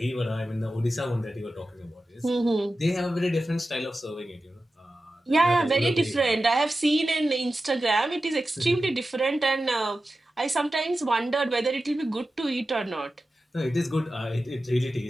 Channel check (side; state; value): both; normal; correlation 0.93